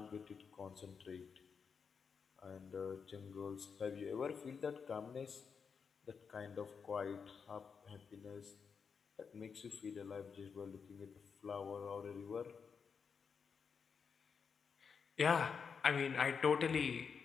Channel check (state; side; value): quieter; right; 6.0 dB